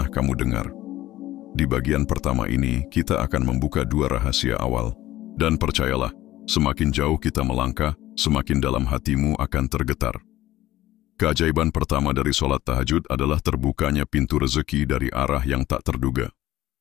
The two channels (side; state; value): right; quieter; 15.4 dB